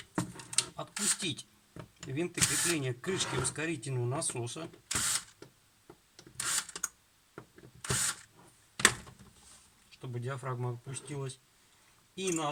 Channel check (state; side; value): identical; both; correlation 1.00